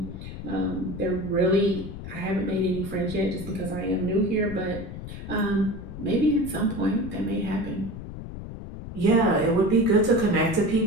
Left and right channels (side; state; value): left; noise; rumble, 10 dB below the sound